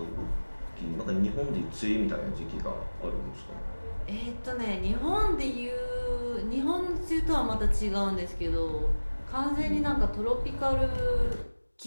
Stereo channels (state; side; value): inverted; both; correlation -1.00